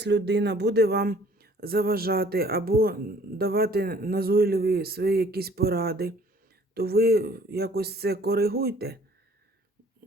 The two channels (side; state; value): both; normal; correlation 0.56